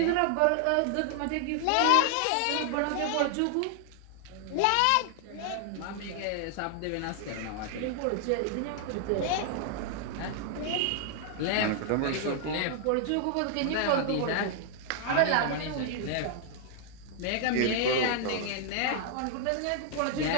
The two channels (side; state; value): both; different; correlation 0.00